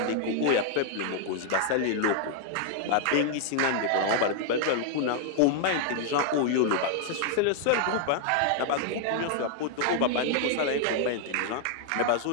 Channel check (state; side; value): different; both; correlation 0.00